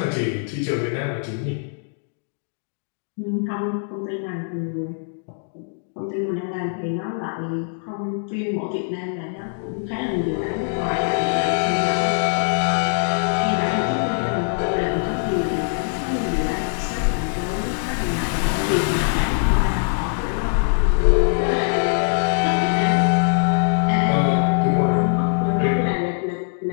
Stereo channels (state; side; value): silent; right; digital silence